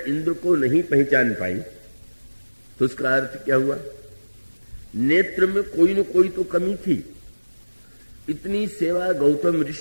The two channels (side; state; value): both; inverted; correlation -1.00